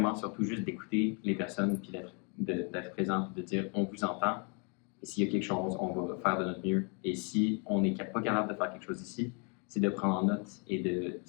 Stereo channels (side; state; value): right; quieter; 36.3 dB